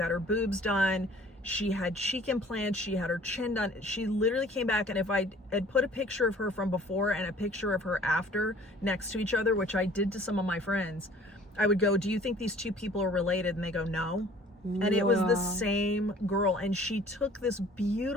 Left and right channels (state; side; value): normal; both; correlation 0.51